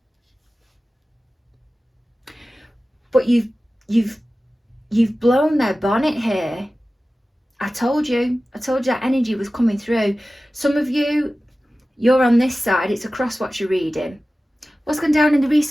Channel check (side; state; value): both; normal; correlation 0.96